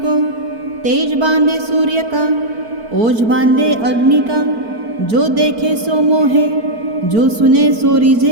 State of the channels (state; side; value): late; left; 4.5 ms